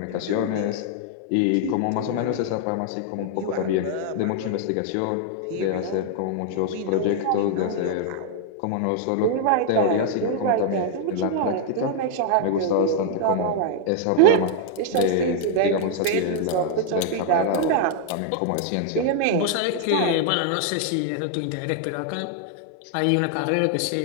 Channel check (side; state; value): both; different; correlation 0.00